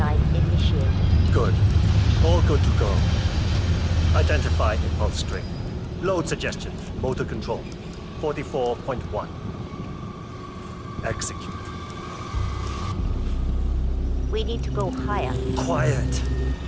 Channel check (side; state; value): both; identical; correlation 1.00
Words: initiated. Good. All good to go. Identify impulse string. Load suggestion. Motor control. 44.1. Execute. We need to go higher. Quiet.